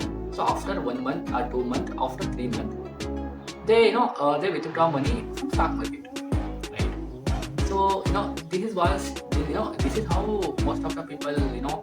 So after 1 month or 2 month, after 3 months, they withdraw money from stock market, right? So this is how most of the people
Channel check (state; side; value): identical; both; correlation 1.00